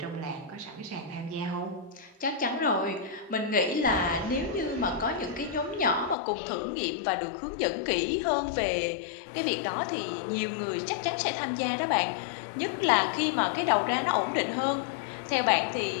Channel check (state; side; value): drops out; right; at 6.2 s